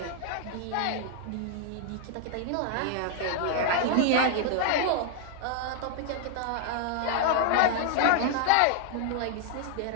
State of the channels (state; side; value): different; both; correlation 0.00